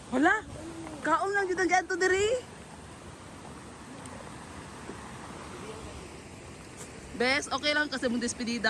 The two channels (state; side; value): identical; both; correlation 1.00